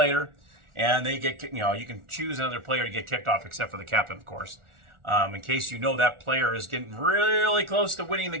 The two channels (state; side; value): late; left; 1.4 ms